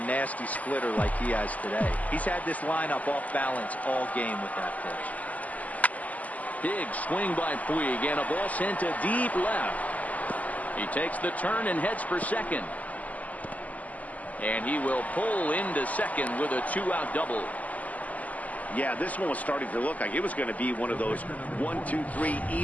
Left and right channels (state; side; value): late; right; 0.075 ms